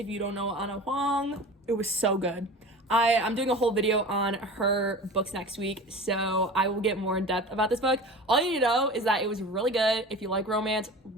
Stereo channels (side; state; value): both; normal; correlation 0.35